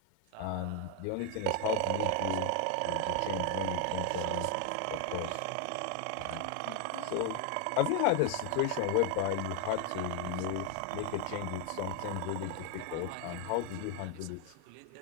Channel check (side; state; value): both; different; correlation 0.01